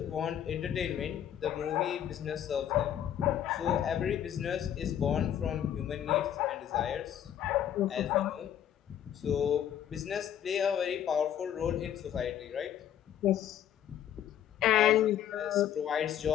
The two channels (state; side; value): quieter; right; 10.3 dB